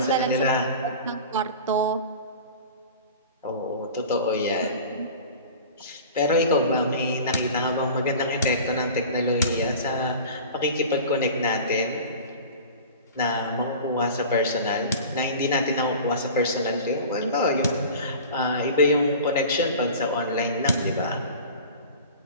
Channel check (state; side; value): inverted; both; correlation -0.38